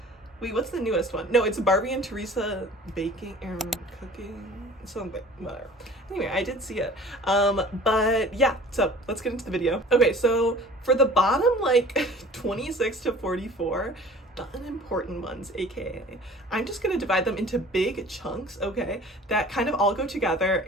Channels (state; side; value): normal; both; correlation 0.46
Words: Wait, what's the newest one? No, it's Barbie and Teresa baking and cooking, something, whatever. Anyway, I did see it. But yeah, so let's get into the video. Okay, so for the bottom, like 26 to 44, the unimportant ones, aka, I'm just gonna divide them into big chunks, okay, that kind of all go together,